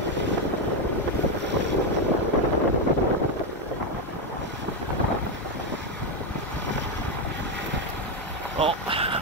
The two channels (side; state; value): both; normal; correlation 0.06